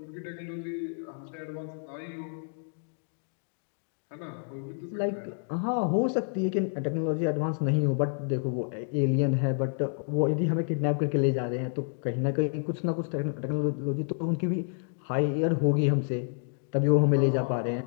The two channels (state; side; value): silent; right; digital silence